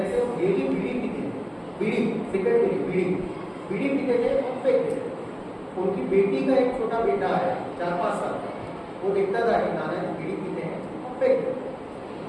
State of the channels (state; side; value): identical; both; correlation 1.00